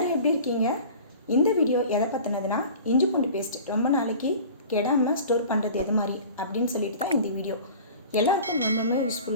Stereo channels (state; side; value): inverted; both; correlation -0.41